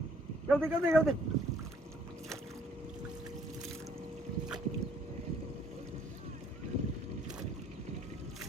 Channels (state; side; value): normal; both; correlation 0.62